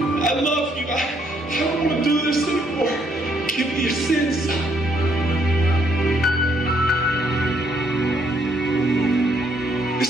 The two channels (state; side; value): normal; both; correlation 0.70